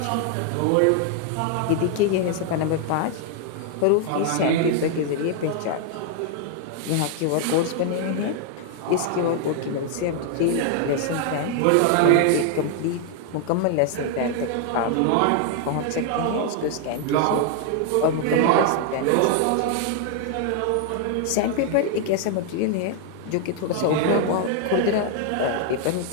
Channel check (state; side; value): different; both; correlation 0.00